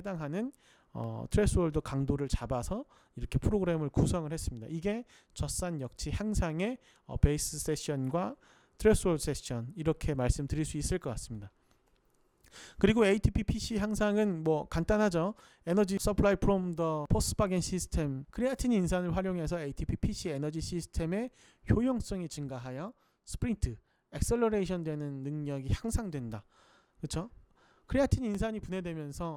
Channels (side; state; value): both; identical; correlation 1.00